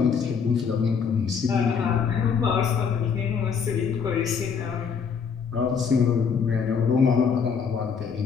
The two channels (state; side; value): quieter; right; 6.3 dB